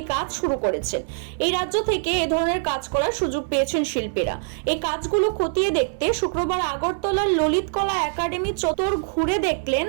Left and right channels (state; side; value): silent; left; digital silence